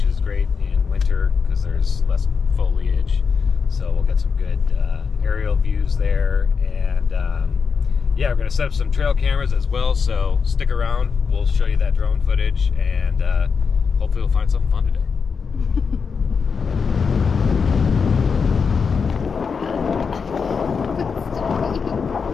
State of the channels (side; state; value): right; quieter; 5.6 dB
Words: is great in winter because there's less foliage. So we'll get some good aerial views there, and yeah, we're gonna set up some trail cameras as well. So stick around. We'll show you that drone footage, and hopefully we'll find something fun today.